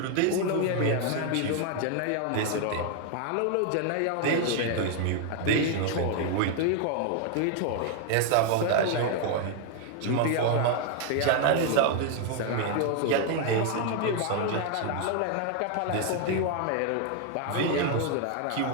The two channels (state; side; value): different; both; correlation 0.00